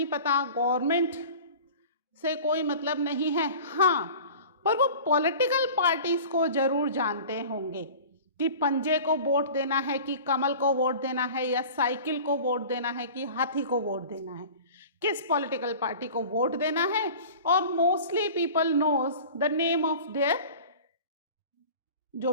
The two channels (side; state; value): both; inverted; correlation -0.40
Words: पता, गवर्नमेंट से कोई मतलब नहीं है. हाँ, पर वो पॉलिटिकल पार्टीज को जरूर जानते होंगे कि पंजे को वोट देना है कि कमल को वोट देना है, या साइकिल को वोट देना है कि हाथी को वोट देना है, किस पॉलिटिकल पार्टी को वोट देना है. और mostly people knows the name of their, जो